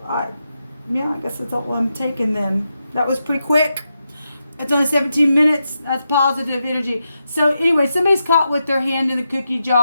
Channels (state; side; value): inverted; both; correlation -0.86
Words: guess that's all I'm taking then. That was pretty quick. It's only 17 minutes. That's positive energy. So anyway, somebody's caught with their hand in the cookie